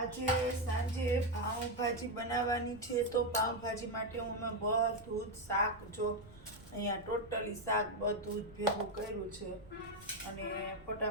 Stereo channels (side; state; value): right; noise; rumble, 20 dB below the sound